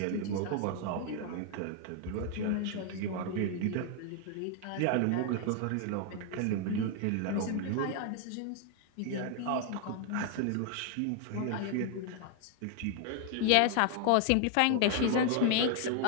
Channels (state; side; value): different; both; correlation 0.00